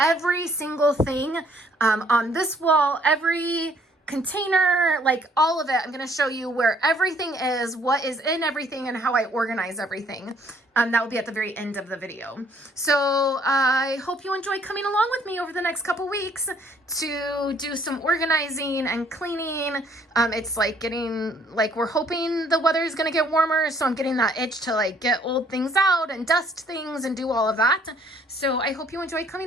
single thing on this wall, every container, like all of it. I'm going to show you where everything is, what is in everything, and how I organize everything. That will be at the very end of the video. So I hope you enjoy coming along with me over the next couple weeks to do some organizing and cleaning. It's like we're hoping the weather is going to get warmer, so I'm getting that itch to like get old things out and dust things and do all of that. So I hope you enjoy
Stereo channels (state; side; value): normal; both; correlation 0.63